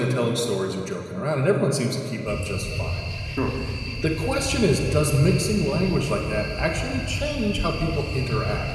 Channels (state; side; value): identical; both; correlation 1.00